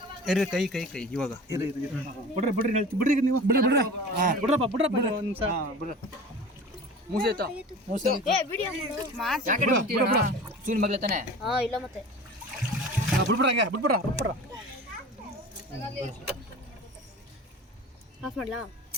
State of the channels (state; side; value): normal; both; correlation 0.37